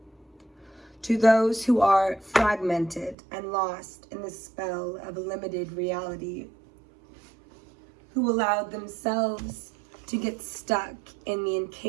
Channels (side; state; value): left; drops out; at 3.2 s